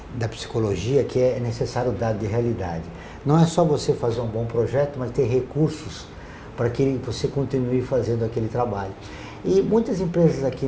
da psicologia que é necessário dado de realidade. Não é só você fazer um bom projeto, mas ter recursos para que você continue fazendo aquele trabalho. E muitas empresas aqui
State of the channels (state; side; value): identical; both; correlation 1.00